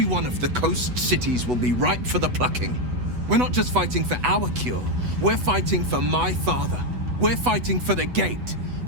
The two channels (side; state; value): left; late; 8.1 ms